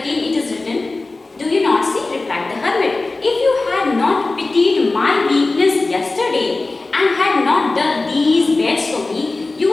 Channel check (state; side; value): quieter; right; 3.3 dB